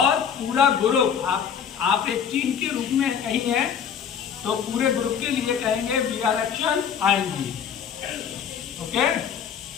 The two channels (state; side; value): quieter; right; 7.7 dB